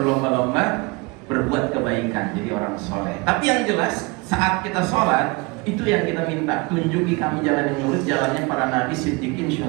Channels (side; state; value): left; quieter; 26.4 dB